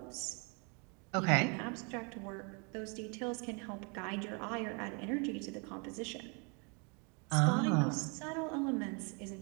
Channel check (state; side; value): quieter; left; 34.4 dB